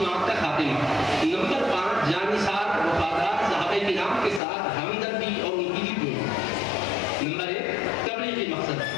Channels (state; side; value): drops out; right; at 4.4 s